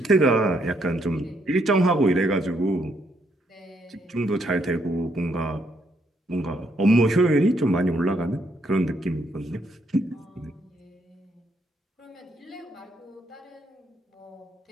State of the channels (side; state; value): both; normal; correlation 0.74